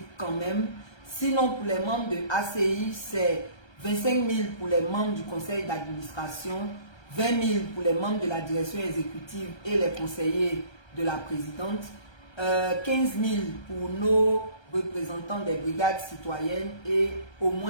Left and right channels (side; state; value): right; late; 1.3 ms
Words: quand même. Sinon, pour les membres de ACI, c'est 25 000 pour les membres du conseil d'administration, 20 000 pour les membres de la direction exécutive et les conseillers de la présidente, 15 000 pour nos représentants des brigades citoyennes et au